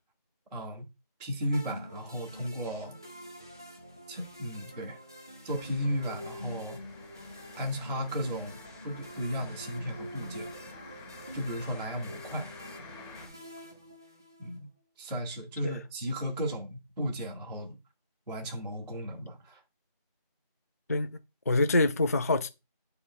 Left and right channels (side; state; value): both; inverted; correlation -0.68